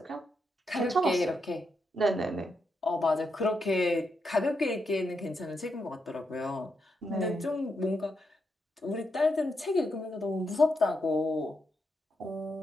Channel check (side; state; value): both; normal; correlation 0.83